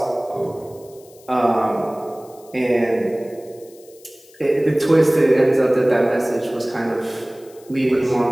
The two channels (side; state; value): left; noise; hiss, 26 dB below the sound